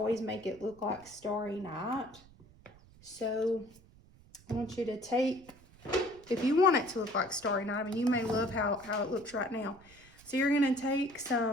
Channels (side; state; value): right; noise; rumble, 25 dB below the sound